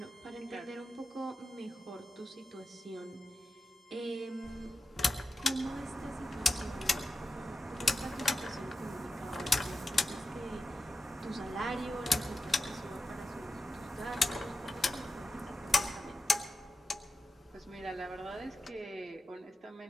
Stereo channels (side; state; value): both; normal; correlation 0.91